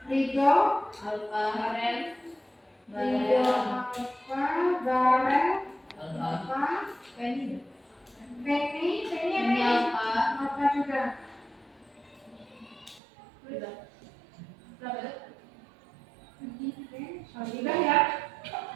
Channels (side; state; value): left; drops out; at 13.0 s